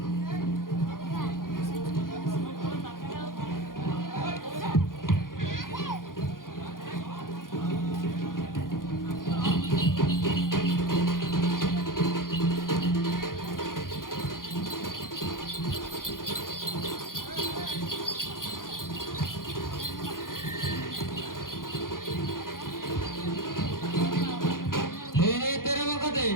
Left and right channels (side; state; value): right; late; 0.90 ms